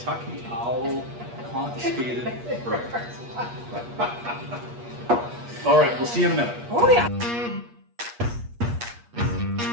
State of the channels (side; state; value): left; late; 8.4 ms